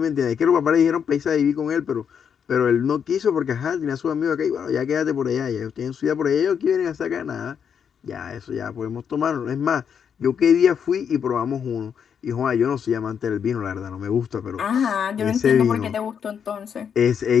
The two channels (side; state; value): right; quieter; 7.5 dB